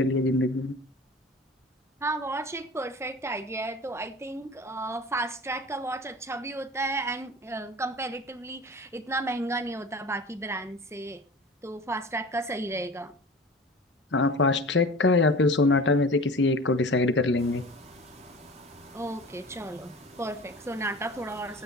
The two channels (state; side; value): normal; both; correlation 0.38